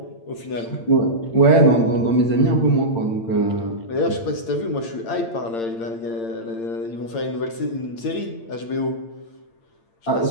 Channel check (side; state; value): right; late; 8.8 ms